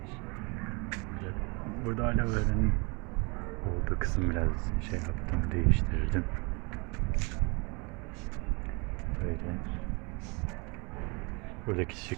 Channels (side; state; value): left; quieter; 30.6 dB